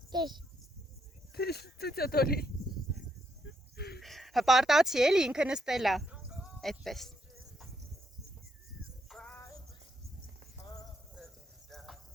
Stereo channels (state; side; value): normal; both; correlation 0.76